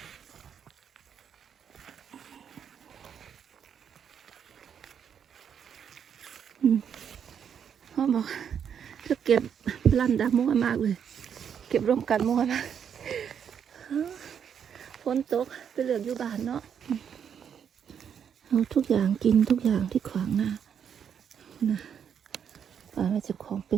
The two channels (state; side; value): quieter; left; 8.0 dB